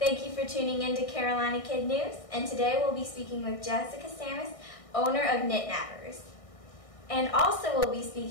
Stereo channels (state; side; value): late; right; 1.6 ms